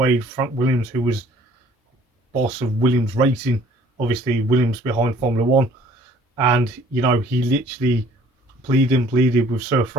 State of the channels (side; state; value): both; normal; correlation 0.55